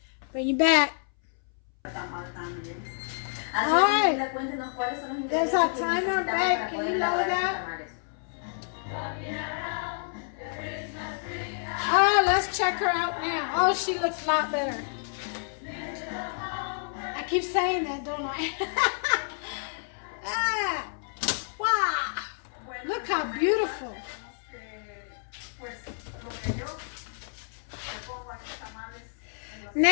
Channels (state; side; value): silent; right; 58 dB below the other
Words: Bring you back. Alright. There's our timer back. Can you lower that? Oh, let's check her out now. Oh, she looks a lot better. I keep saying that, don't I? Ah, wow. Look how beautiful.